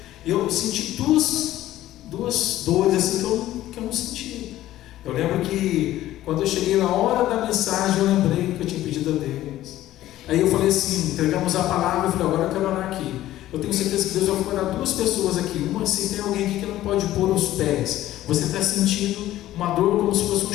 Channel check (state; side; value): quieter; right; 14.3 dB